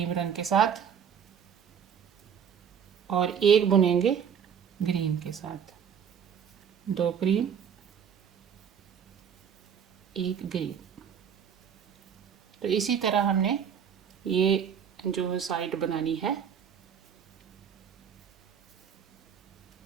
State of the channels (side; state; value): left; quieter; 7.8 dB